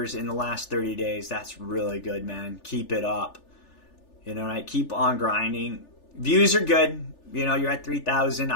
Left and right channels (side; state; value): right; late; 3.4 ms